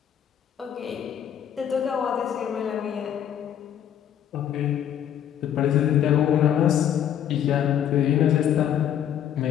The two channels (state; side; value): quieter; right; 9.8 dB